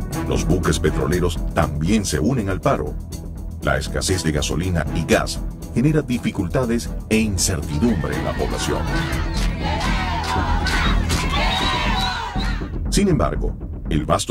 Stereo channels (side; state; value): both; identical; correlation 1.00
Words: Los buques petroleros también se unen al paro. La escasez de gasolina y gas genera dificultades e incertidumbre en la población. Sin embargo, el